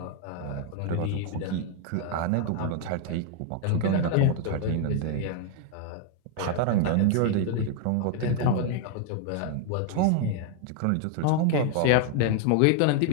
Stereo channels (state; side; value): different; both; correlation 0.00